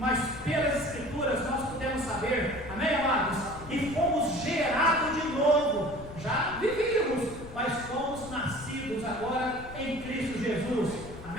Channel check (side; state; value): left; noise; rumble, 14 dB below the sound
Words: pelas Escrituras nós podemos saber, amém, amados? E fomos gerados de novo. Já vivíamos, mas fomos nascidos agora em Cristo Jesus.